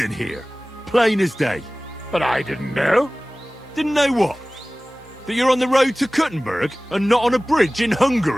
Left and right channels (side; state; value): both; normal; correlation 0.98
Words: here. Plain as day. But I didn't know. Didn't know what? That you're on the road to Kuttenberg and not on a bridge in